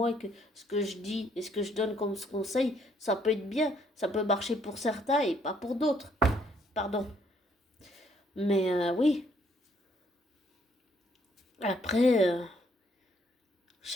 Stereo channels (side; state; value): both; normal; correlation 0.68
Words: et que ce que je dis et ce que je donne comme conseil, ça peut être bien, ça peut marcher pour certains et pas pour d'autres. Pardon. Mais oui. Après,